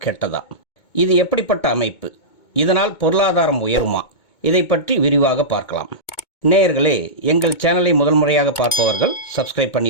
கெட்டதா? இது எப்படிப்பட்ட அமைப்பு? இதனால் பொருளாதாரம் உயருமா? இதை பற்றி விரிவாக பார்க்கலாம். நேயர்களே, எங்கள் சேனலை முதல் முறையாக பார்ப்பவர்கள் சப்ஸ்கிரைப்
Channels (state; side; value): late; right; 2.2 ms